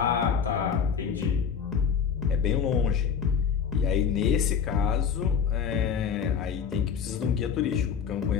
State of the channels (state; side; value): quieter; right; 7.0 dB